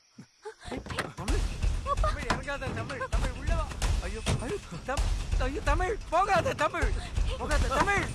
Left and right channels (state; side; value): identical; both; correlation 1.00